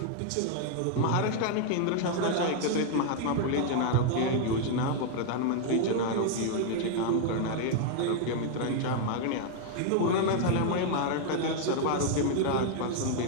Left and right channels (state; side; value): different; both; correlation 0.00